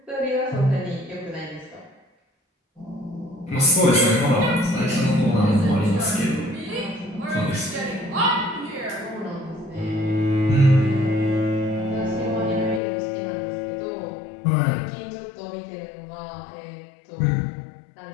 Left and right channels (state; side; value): drops out; right; at 12.8 s